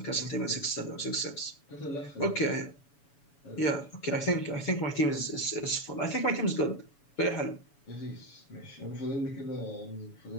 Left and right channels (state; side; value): late; right; 7.1 ms